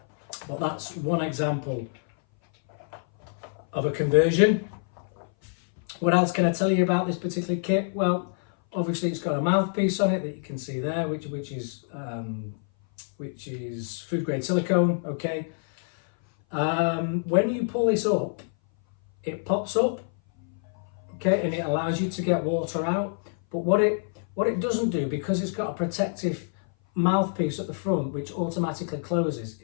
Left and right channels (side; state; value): right; silent; 58 dB below the other